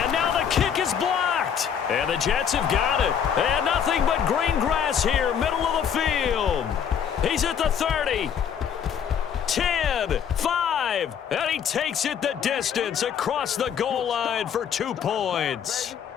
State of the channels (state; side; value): quieter; right; 8.1 dB